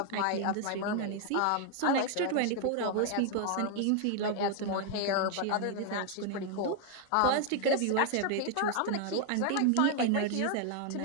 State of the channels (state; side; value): different; both; correlation 0.00